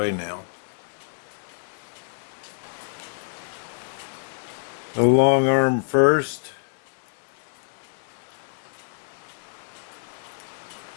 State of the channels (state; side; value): silent; right; digital silence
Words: now. The long arm first.